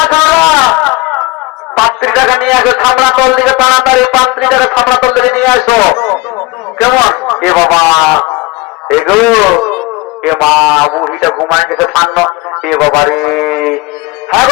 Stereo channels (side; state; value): right; quieter; 23.0 dB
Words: খাওয়া 35 নিয়ে আসো, ছামড়া তল দিকে তাড়াতাড়ি 35 ছামড়া তল দিকে নিয়ে আসো। কেমন? এ বাবা, এগো এ মা, বুড়িটা ঘুমায় গেছে ফান্ন। এ বাবা রে, হ্যাঁ